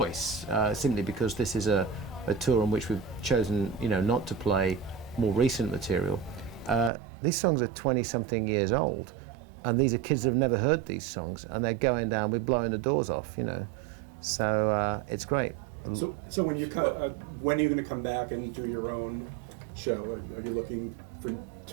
simply because this is a tour on which we've chosen, you know, not to play more recent material. These songs are 20-something years old, and these are kids that have never heard these songs, and they're going down, we're blowing the doors off, you know. So it's great. So when you when are you going to come back and do your own show? Are you looking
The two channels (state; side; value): drops out; left; at 6.9 s